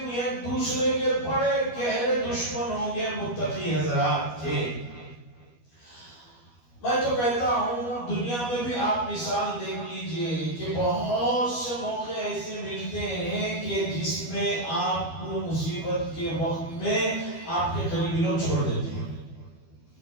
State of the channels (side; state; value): right; late; 12 ms